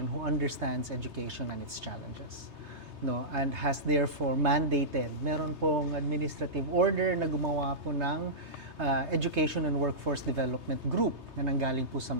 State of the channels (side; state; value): left; late; 3.3 ms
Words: who understands education and its challenges. No, and has therefore mandated, meron pong administrative order na gumawa po ng Education and Workforce Development Group na nanggaling po sa